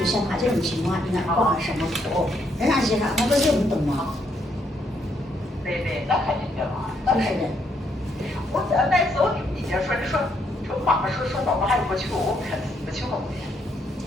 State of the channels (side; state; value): both; normal; correlation 0.73